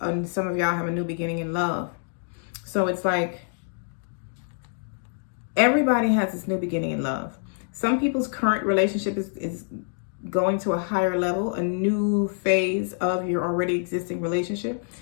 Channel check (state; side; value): silent; right; digital silence